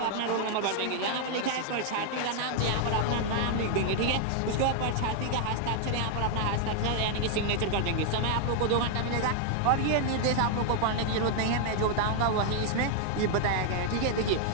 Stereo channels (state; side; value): different; both; correlation 0.00